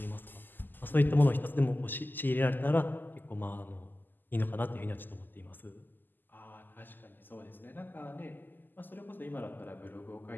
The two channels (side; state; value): right; late; 0.090 ms